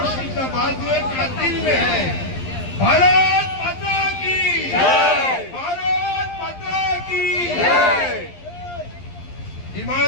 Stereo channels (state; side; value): late; right; 11 ms